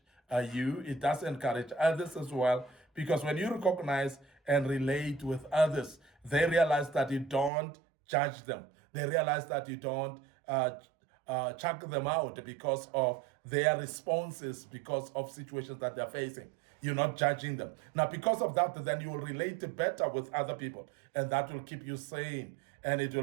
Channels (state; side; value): drops out; left; at 7.5 s